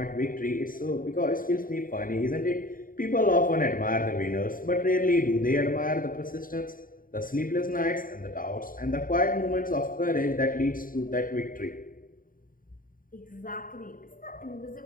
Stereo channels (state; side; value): late; right; 0.40 ms